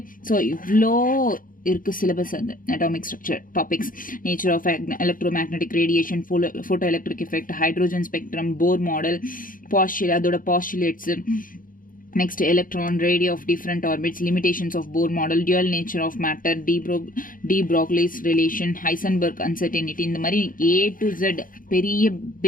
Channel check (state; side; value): late; right; 0.40 ms